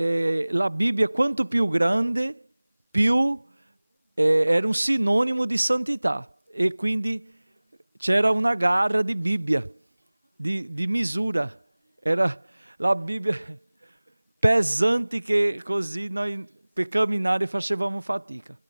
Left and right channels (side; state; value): both; inverted; correlation -1.00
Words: Bibbia, quanto più grande, più era un sinonimo di santità. E quindi c'era una gara di Bibbia, di misura. Era la Bibbia pesante che così noi per camminare facevamo fatica.